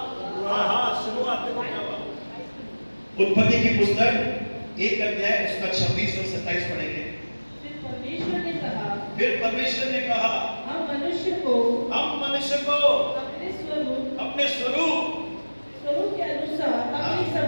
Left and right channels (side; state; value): both; inverted; correlation -1.00